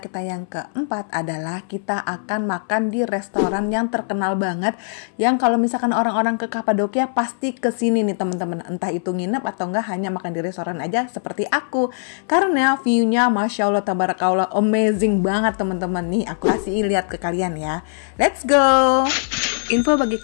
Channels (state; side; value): silent; right; 63 dB below the other